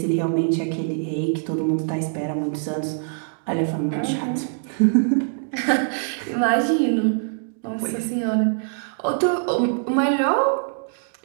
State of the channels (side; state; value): left; silent; digital silence